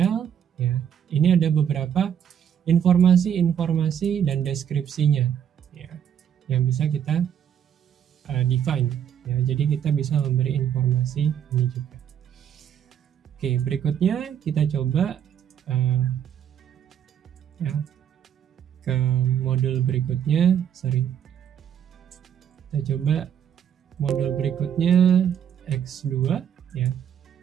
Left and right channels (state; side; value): quieter; left; 9.0 dB